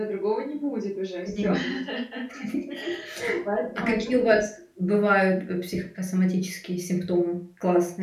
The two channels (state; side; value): identical; both; correlation 1.00